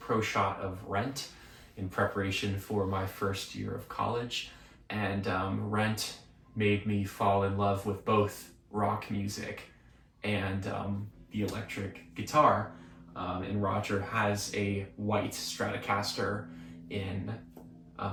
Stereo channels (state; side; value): identical; both; correlation 1.00